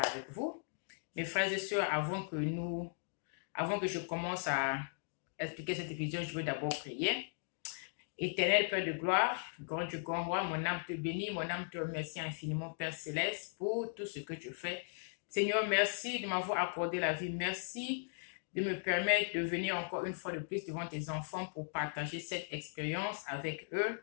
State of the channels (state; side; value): silent; right; digital silence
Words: avec vous. Mes frères et sœurs, avant que je commence à expliquer cette vision, je veux d'abord prier. Éternel Père de gloire, grand Dieu, grand roi, mon âme te bénit, mon âme te remercie infiniment, Père céleste, pour tout ce que tu fais. Seigneur, merci de m'avoir accordé la vie. Merci de me permettre de venir encore une fois de plus devant tes enfants pour partager cette expérience avec